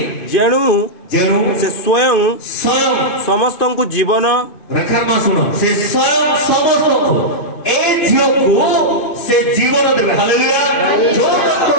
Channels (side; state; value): right; late; 2.5 ms